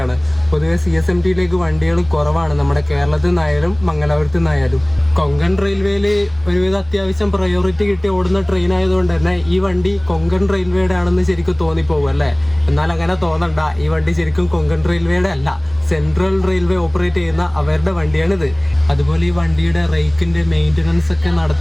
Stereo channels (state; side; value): noise; right; rumble, 26 dB below the sound